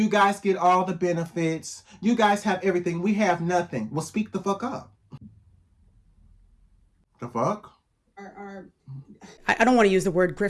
guys get all the benefits. You guys have everything. We have nothing. Well, speak the fuck up. The fuck? I don't want to use the word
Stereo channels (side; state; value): both; identical; correlation 1.00